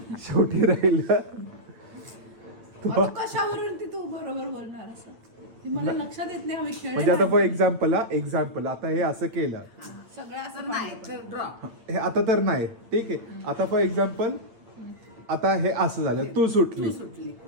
शेवटी राहिलं आता कशावरून ती तू बरोबर बोलणार असं ते मला लक्षात येत नाही. आम्ही म्हणजे आता फॉर खेळले एक्झाम्पल आता हे असं केलं, सगळं असं नाही तर ड्रॉ. हे आता तर नाही. ठीक आहे, आता फॉर एक्झाम्पल आता हे असं झालं, तू सुटली.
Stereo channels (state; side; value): late; left; 8.8 ms